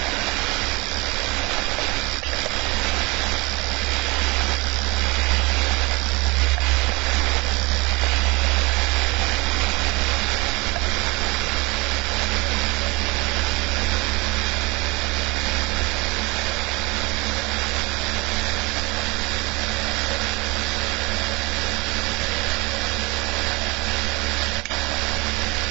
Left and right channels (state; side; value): quieter; left; 25.3 dB